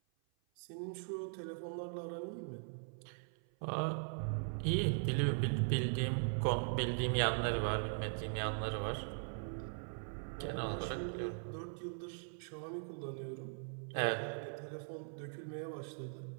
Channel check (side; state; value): left; silent; 51 dB below the other